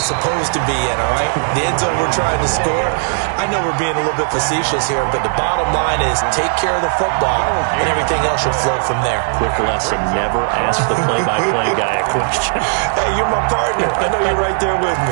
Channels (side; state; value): left; silent; 69 dB below the other